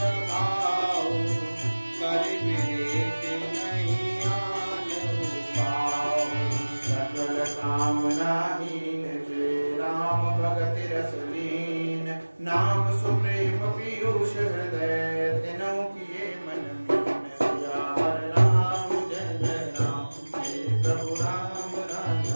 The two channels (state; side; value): inverted; both; correlation -1.00